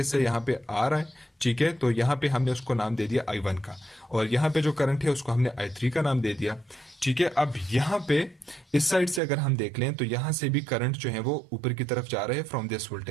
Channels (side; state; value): left; drops out; at 9.2 s